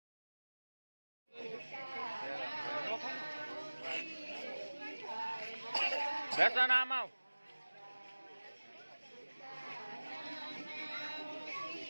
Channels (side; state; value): both; inverted; correlation -1.00